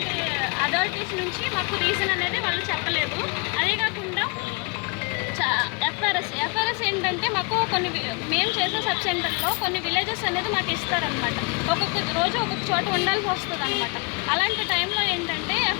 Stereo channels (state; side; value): quieter; right; 31.8 dB